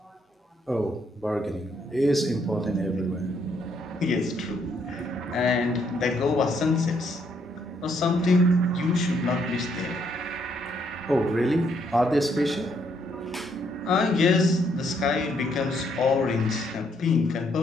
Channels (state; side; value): normal; both; correlation 0.72